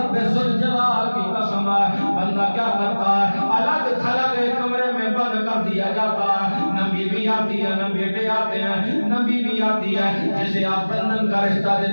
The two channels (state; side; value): inverted; both; correlation -1.00